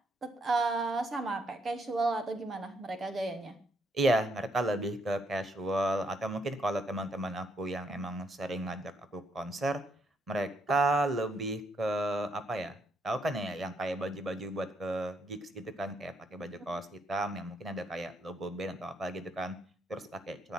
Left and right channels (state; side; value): normal; both; correlation 0.74